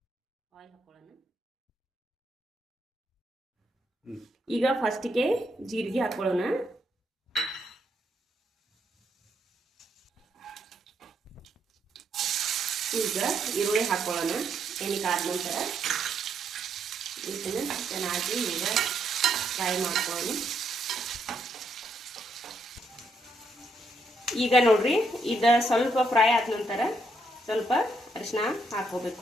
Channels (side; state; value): both; normal; correlation 0.76